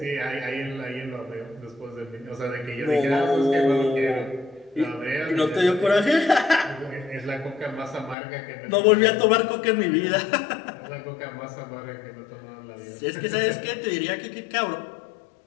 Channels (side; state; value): right; drops out; at 8.2 s